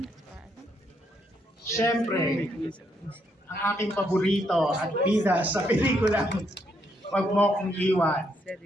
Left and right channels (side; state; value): both; normal; correlation 0.75